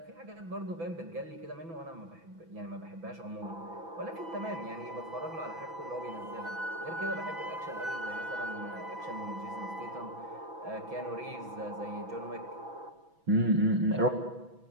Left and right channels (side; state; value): left; late; 6.0 ms